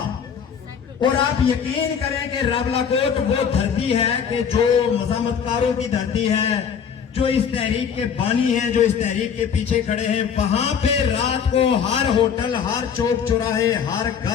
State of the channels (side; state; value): right; quieter; 7.3 dB